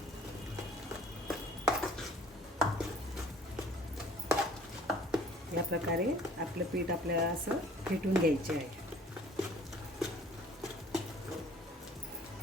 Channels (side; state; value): both; normal; correlation 0.52